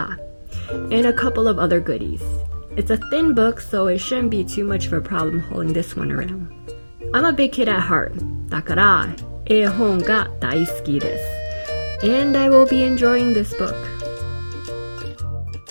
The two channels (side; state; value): both; inverted; correlation -1.00